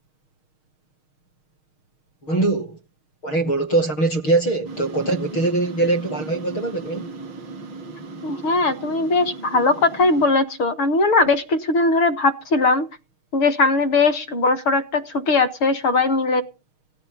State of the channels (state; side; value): late; right; 6.4 ms